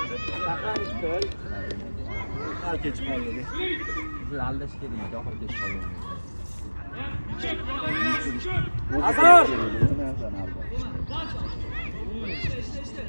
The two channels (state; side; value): inverted; both; correlation -1.00